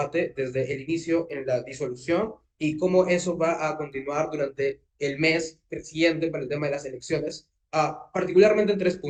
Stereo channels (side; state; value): both; identical; correlation 1.00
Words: desde el inicio en la disolución y cómo eso va a continuar durante el mes siguiente para el tema de las elecciones, particularmente en tres